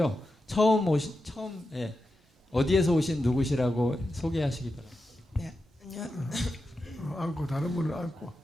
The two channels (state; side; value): normal; both; correlation 0.89